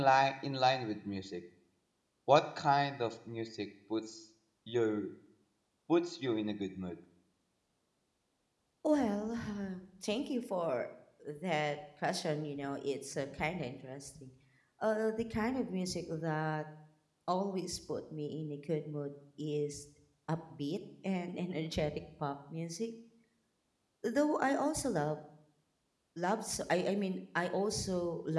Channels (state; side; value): identical; both; correlation 1.00